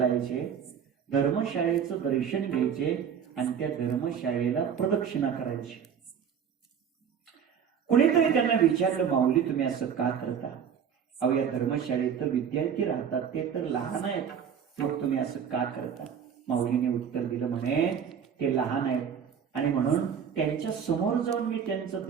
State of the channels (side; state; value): left; quieter; 7.7 dB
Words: धर्मशाळेचं दर्शन घ्यायचे आणि त्या धर्मशाळेला प्रदक्षिणा करायची. कुणीतरी त्यांना विचारलं माऊली तुम्ही असं का करता? अहो या धर्मशाळेत तर विद्यार्थी राहतात, ते तर लहान आहेत, मग तुम्ही असं का करता? माऊलीने उत्तर दिलं म्हणे ते लहान आहेत आणि म्हणून त्यांच्या समोर जाऊन मी त्यांचं